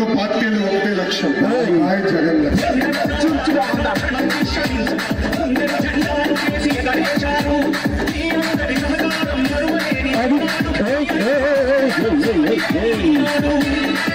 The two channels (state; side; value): noise; left; rumble, 27 dB below the sound